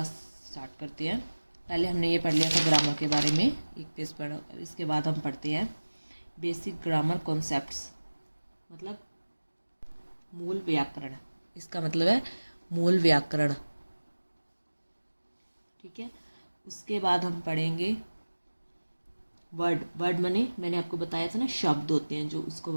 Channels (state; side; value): inverted; both; correlation -1.00